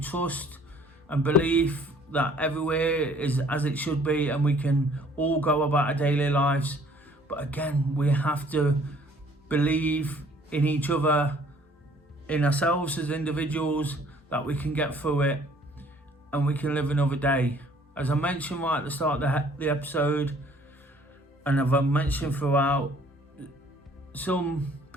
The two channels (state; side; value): normal; both; correlation 0.57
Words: and belief that everywhere is as it should be, and we can all go about our daily lives. But again, we have to believe in each other, in ourselves as individuals, that we can get through it and we can live another day. As I mentioned right at the start of the episode, and I've mentioned throughout, some